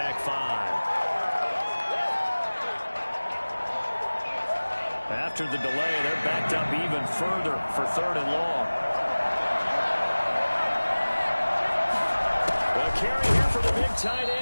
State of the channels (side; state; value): both; inverted; correlation -1.00